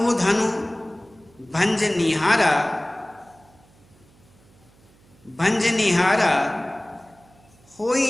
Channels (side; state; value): right; noise; hum, 30 dB below the sound